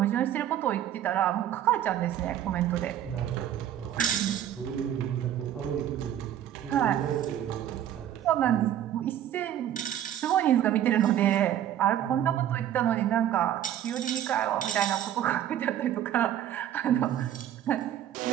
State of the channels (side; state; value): left; quieter; 11.1 dB